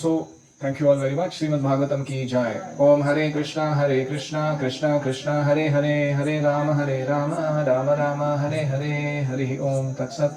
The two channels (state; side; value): identical; both; correlation 1.00